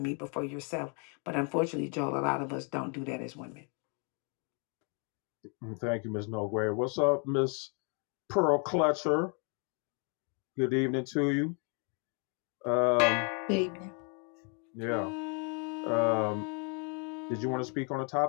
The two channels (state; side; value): quieter; right; 37.8 dB